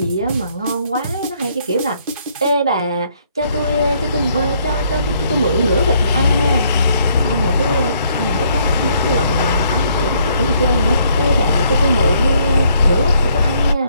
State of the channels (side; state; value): both; inverted; correlation -0.68